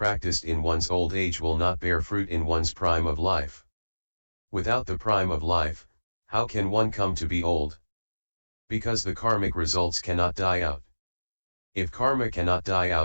in one's old age will not bear fruit in one's prime of life. Without the prime of life, how can one come to be old? Because the karmic results cannot die out. If karma cannot die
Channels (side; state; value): both; inverted; correlation -1.00